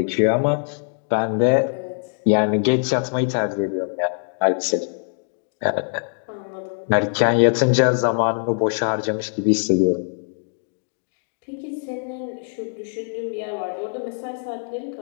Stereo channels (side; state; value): right; silent; digital silence